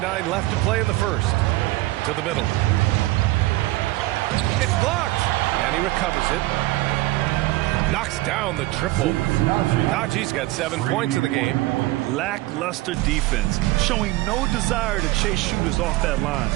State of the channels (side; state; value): left; quieter; 18.9 dB